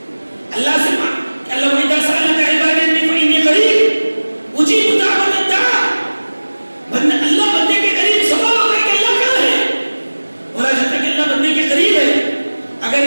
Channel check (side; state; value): both; inverted; correlation -1.00